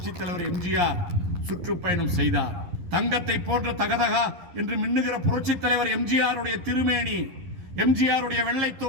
தலைவர் எம்ஜிஆர் சுற்றுப்பயணம் செய்தார். தங்கத்தை போன்ற தகதகா என்று மின்னுகிற புரட்சி தலைவர் எம்ஜிஆருடைய திருமேனி, எம்ஜிஆருடைய வெள்ளை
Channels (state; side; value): late; left; 11 ms